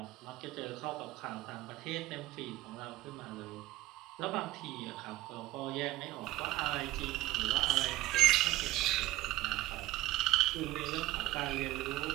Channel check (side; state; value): left; quieter; 16.5 dB